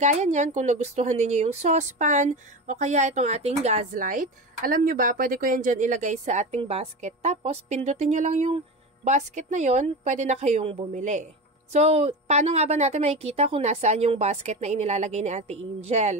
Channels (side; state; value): both; normal; correlation 0.25